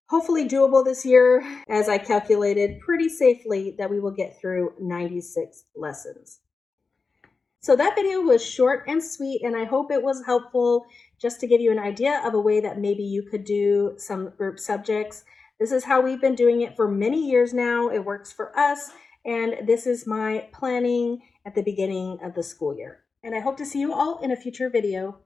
hopefully doable this year, as I calculated pretty safely that we will get through 96 lessons. So that video was short and sweet, and I hope it was helpful just to give you an idea of a way that maybe you could do some group subjects. This is how we've been doing it for many years now. It works for us, and this is my planning at the beginning of the school year. And I hope to see you all in a future video.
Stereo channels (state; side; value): quieter; right; 4.5 dB